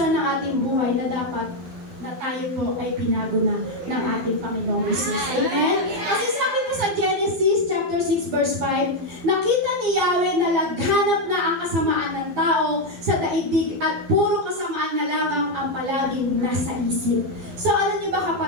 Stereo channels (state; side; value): late; left; 12 ms